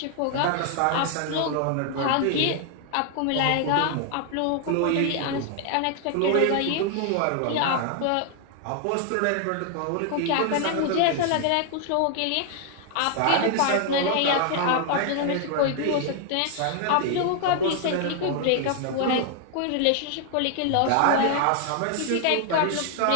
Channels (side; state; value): both; different; correlation 0.00